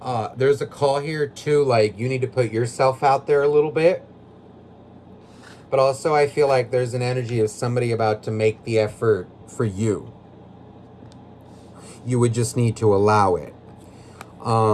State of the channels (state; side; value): identical; both; correlation 1.00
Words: There's a call here too, like you need to put yourself out there a little bit. But also I feel like there's an energy of somebody about to make the effort for you. You would just need to allow it.